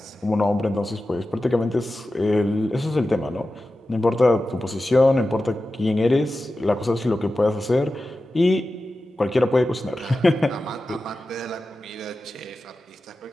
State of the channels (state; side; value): normal; both; correlation 0.93